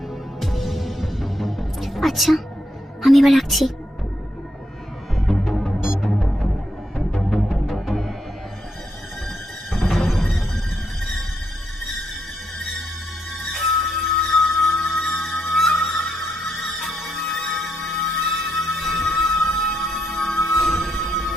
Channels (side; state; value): both; normal; correlation 0.80